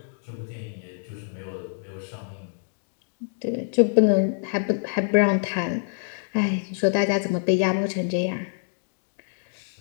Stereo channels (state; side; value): silent; right; digital silence